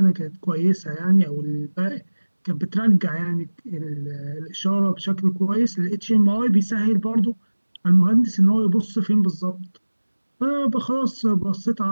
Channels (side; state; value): both; inverted; correlation -1.00